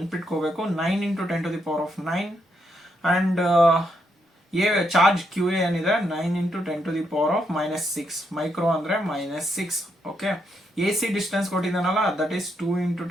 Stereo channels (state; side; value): normal; both; correlation 0.79